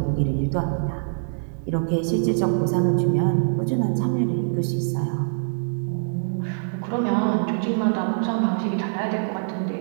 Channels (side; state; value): left; silent; 63 dB below the other